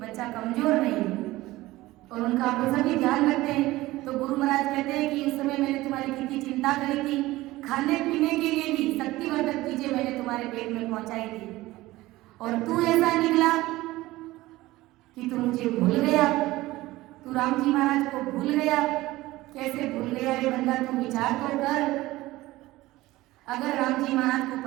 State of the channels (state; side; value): quieter; left; 18.2 dB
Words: बच्चा कमजोर नहीं, और उनका पोषण भी ध्यान रखते हैं। तो गुरु महाराज कहते हैं कि उस समय मैंने तुम्हारी कितनी चिंता करी थी, खाने पीने के लिए भी शक्तिवर्धक चीजें मैंने तुम्हारे पेट में पहुंचाई थी, और तू ऐसा निकला कि तू मुझे भूल गया, तू राम जी महाराज को भूल गया। कैसे भूल गया रे बंदा? तू विचार तो कर। अगर राम जी महाराज को